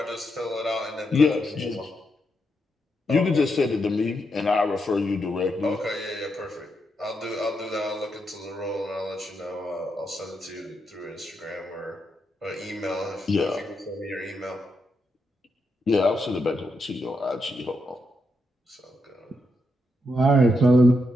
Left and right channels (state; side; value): normal; both; correlation 0.82